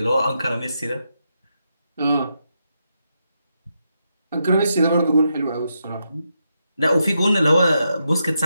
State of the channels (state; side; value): inverted; both; correlation -0.83